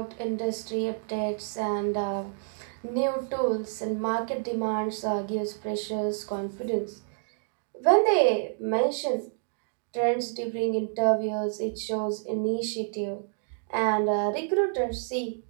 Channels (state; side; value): silent; left; digital silence